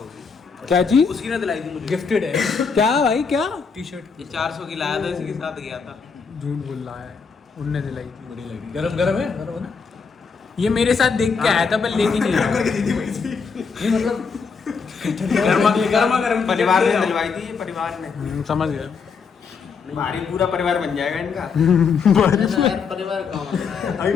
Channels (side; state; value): right; quieter; 5.5 dB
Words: क्या चीज? उसकी ने दिलाई थी मुझे। गिफ्टेड है क्या भाई, क्या टी शर्ट ये 400 की लाया था, इसी के साथ गया था। झूठ बोल रहा है, उनने दिलाई थी। बड़ी लगी। गरम गरम है ना? ये मेरे साथ देख के आया था पर लेके नहीं आया। ये मतलब गर्मा गर्म परिवार ने दिलवाई थी, ये परिवार ने। समझ गया। भारी पूरा परिवार बन जाएगा इनका। परिवार कहाँ बन रहा है? अभी